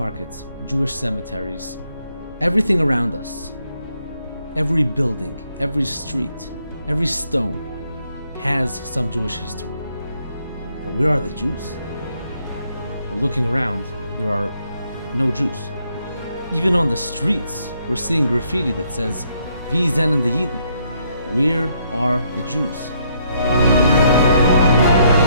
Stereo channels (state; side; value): inverted; both; correlation -0.72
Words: Jewish cemeteries, everything around us. Every building, every street, every stone has some Jewish history. But where are the Jews? Well, looking around, there are no Jews. Even on the streets, we're seeing graffiti that says, "Wie sind die Juden?" Where are the Jews?